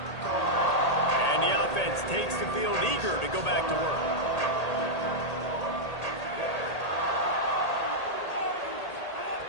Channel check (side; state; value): right; late; 1.8 ms